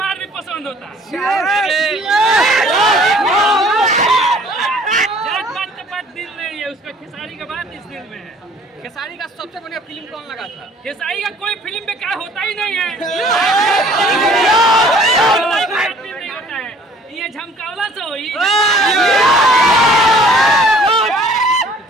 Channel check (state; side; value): normal; both; correlation 0.54